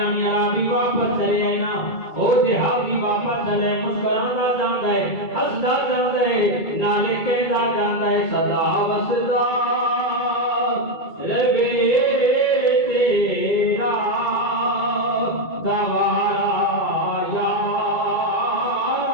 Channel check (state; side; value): late; right; 2.3 ms